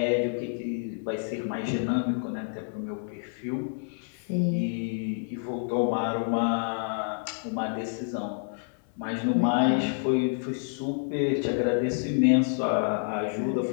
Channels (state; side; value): silent; right; 59 dB below the other